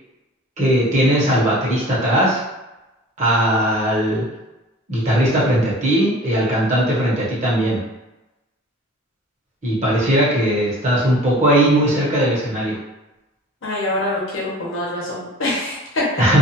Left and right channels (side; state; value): both; normal; correlation 0.44